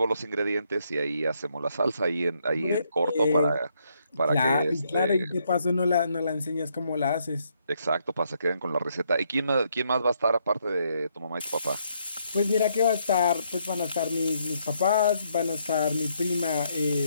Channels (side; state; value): both; inverted; correlation -0.74